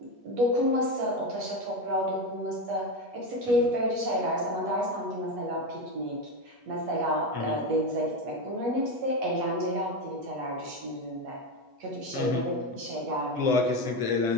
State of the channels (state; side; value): late; left; 8.3 ms